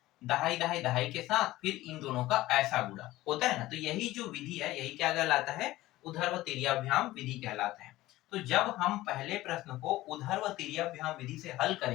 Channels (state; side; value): quieter; right; 16.9 dB